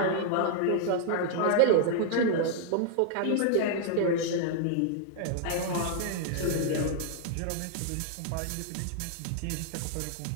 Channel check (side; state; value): both; different; correlation -0.01